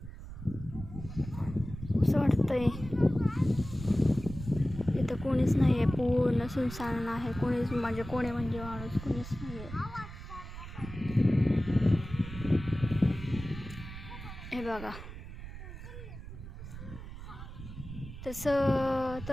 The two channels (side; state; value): right; noise; rumble, 11 dB below the sound